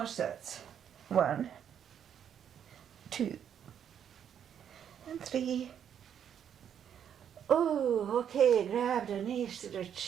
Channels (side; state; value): left; quieter; 8.8 dB